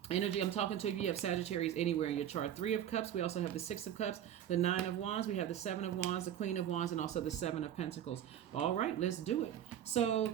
Energy, I'm talking to you have Sagittarius anywhere in your chart. 3 of Cups. We also have the 6 of Cups, the 9 of Wands. We have the 7 of Wands, the Queen of Wands, and also the 7 of Pentacles. All right, let's do it. So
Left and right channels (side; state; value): left; quieter; 10.5 dB